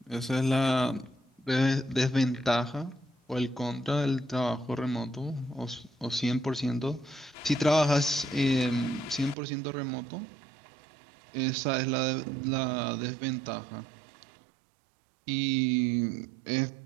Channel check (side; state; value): left; drops out; at 9.3 s